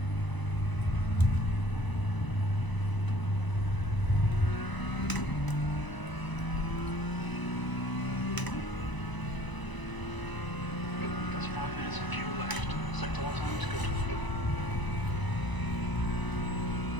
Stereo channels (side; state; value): right; late; 1.0 ms